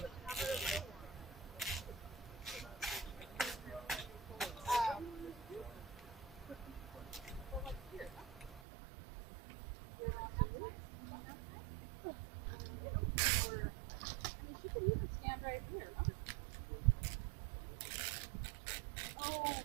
She could even stand right here. Oh,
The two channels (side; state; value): left; drops out; at 8.6 s